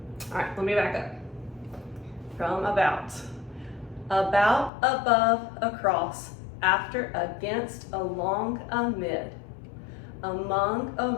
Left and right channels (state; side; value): drops out; right; at 4.7 s